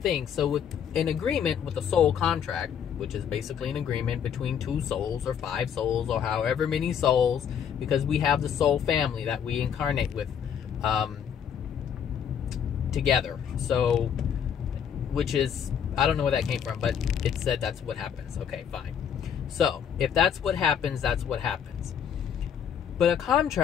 So with an agreement with a soul contract, which is basically an agreement between 2 souls or 5 souls or however many souls, because we have the soul family that we incarnate with together. So, which is, I don't know where that came from, but it said that's what happens. Okay, fine. So if that's what happens, that's what happens. But a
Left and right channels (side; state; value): right; quieter; 8.2 dB